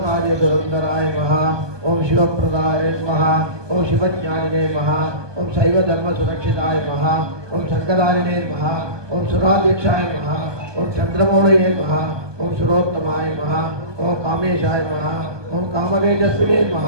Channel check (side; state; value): left; late; 1.2 ms